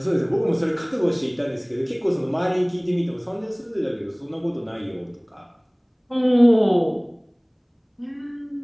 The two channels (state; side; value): identical; both; correlation 1.00